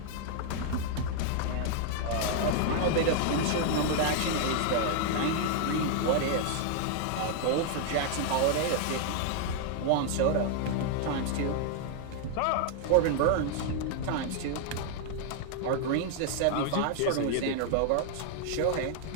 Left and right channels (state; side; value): different; both; correlation 0.00